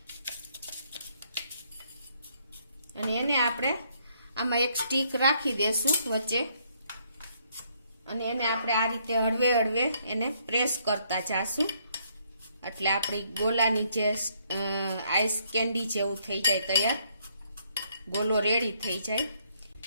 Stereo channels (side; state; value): both; inverted; correlation -0.70